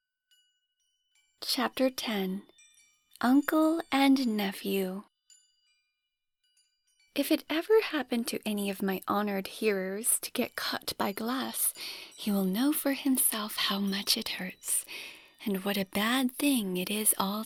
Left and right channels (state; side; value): identical; both; correlation 1.00